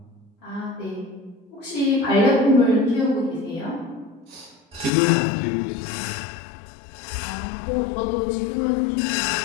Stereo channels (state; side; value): drops out; right; at 4.9 s